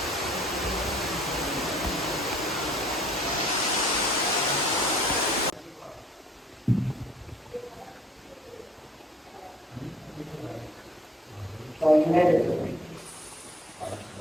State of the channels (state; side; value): normal; both; correlation 0.58